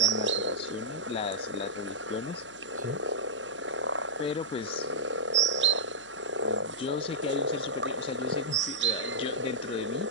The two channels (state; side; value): noise; left; hum, 28 dB below the sound